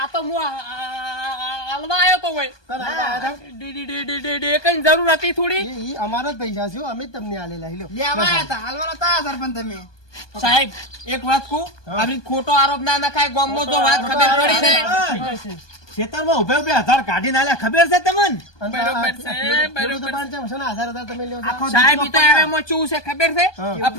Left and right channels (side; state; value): right; late; 1.2 ms